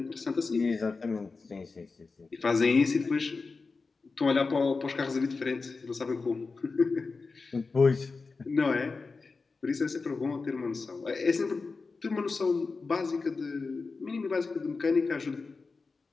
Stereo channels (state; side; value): quieter; right; 4.2 dB